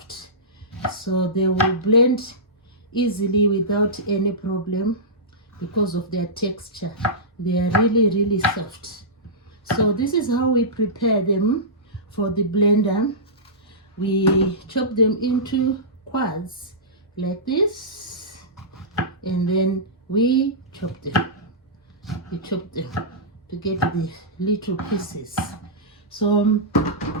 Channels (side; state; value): both; normal; correlation -0.17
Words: so they will blend easily without any problem because of their texture. They are really soft. So this is how we prepare them for the blender. We chop them into quads like this, and then we chop them. you chop them to get the little pieces. So